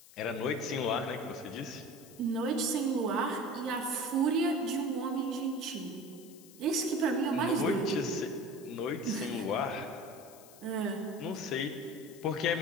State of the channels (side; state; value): left; noise; hiss, 21 dB below the sound